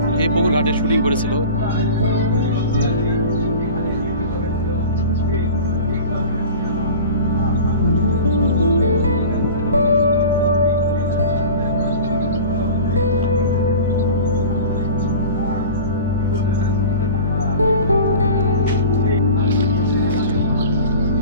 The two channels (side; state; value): both; inverted; correlation -0.37